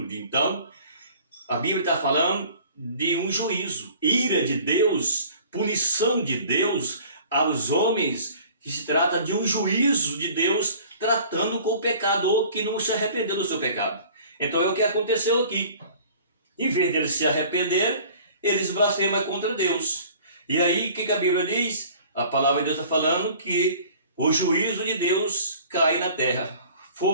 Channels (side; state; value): both; inverted; correlation -0.48